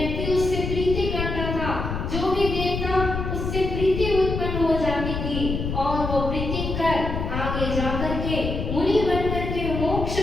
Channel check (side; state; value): left; noise; rumble, 3 dB below the sound